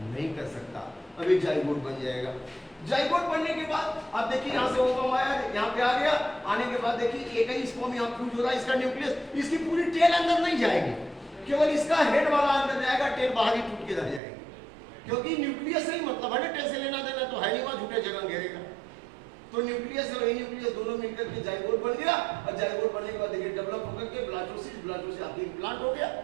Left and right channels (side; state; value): left; drops out; at 14.2 s